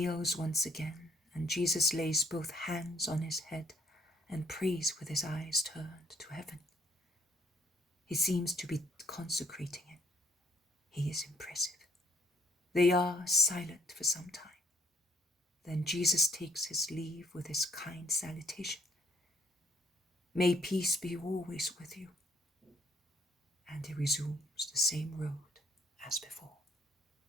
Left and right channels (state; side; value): normal; both; correlation 0.66